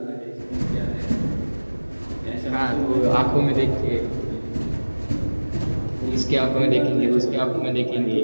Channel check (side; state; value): both; inverted; correlation -1.00